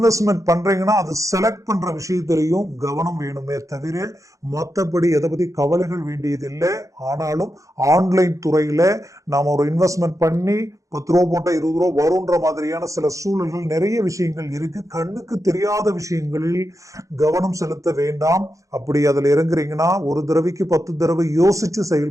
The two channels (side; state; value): left; late; 0.16 ms